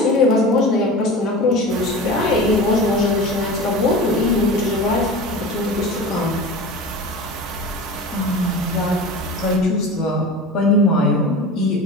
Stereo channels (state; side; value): normal; both; correlation 0.33